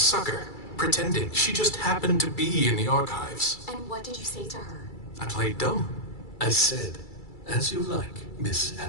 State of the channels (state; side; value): late; right; 2.3 ms